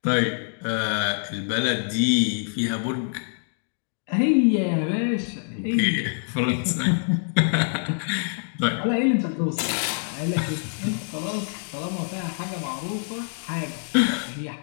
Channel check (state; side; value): silent; right; digital silence